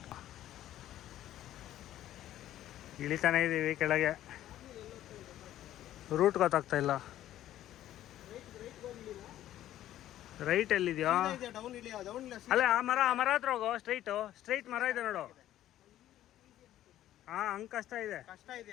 ಇಳಿತಾನೆ ಇದ್ದೀವಿ ಕೆಳಗೆ. ರೂಟ್ ಗೊತ್ತಾಗ್ತಾ ಇಲ್ಲ. ರೈಟ್ ಎಲ್ಲಿದೆಯಾ? ಅಲ್ಲೇ ಆ ಮರ ಹತ್ರ ಹೋಗೋ. ಸ್ಟ್ರೈಟ್ ಮರ ಇದೆ ನೋಡು. ಹಾ, ಹಂಗೆ ಕಷ್ಟ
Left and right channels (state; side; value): quieter; right; 12.9 dB